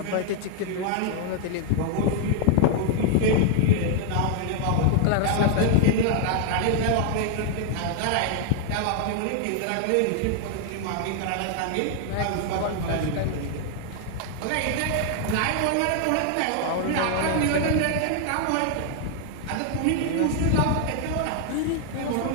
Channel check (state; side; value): different; both; correlation 0.00